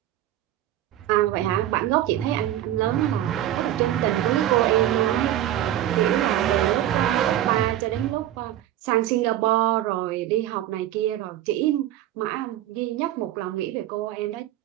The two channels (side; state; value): left; quieter; 12.9 dB